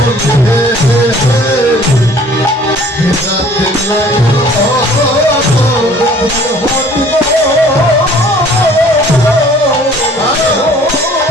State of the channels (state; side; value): normal; both; correlation 0.53